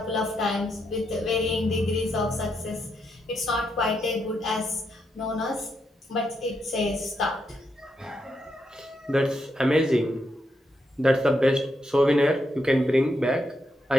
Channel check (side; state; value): both; normal; correlation 0.81